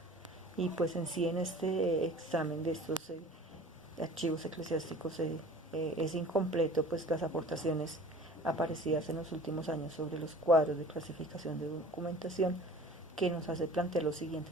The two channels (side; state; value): both; normal; correlation 0.44